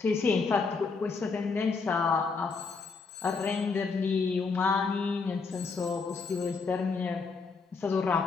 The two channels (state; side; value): quieter; right; 4.7 dB